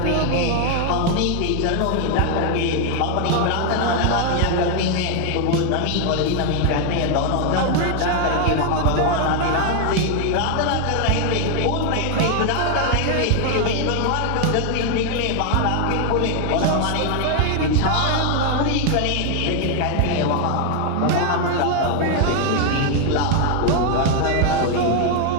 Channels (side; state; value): both; different; correlation 0.00